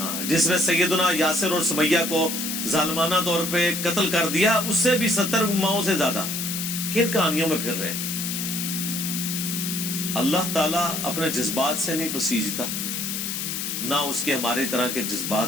جس نے سیدنا یاسر اور سمیہ کو ظالمانہ طور پہ قتل کر دیا, اس سے بھی 70 ماؤں سے زیادہ. کن کہانیوں میں پھر رہے. اللہ تعالیٰ اپنے جذبات سے نہیں پسیجتا, نہ اس کے ہمارے طرح کے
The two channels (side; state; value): left; noise; hiss, 3 dB below the sound